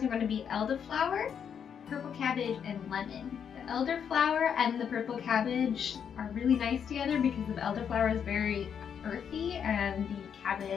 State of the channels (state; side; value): quieter; right; 7.7 dB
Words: are going to be elderflower, purple cabbage, and lemon. The elderflower and the purple cabbage are really nice together because the elderflower is very earthy and the